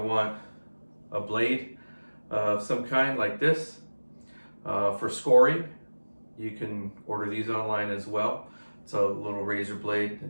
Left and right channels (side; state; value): both; inverted; correlation -1.00